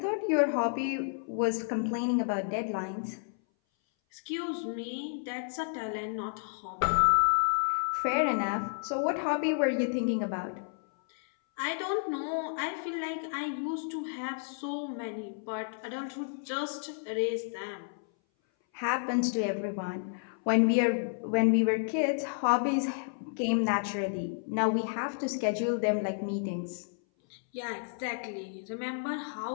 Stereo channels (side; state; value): right; silent; 57 dB below the other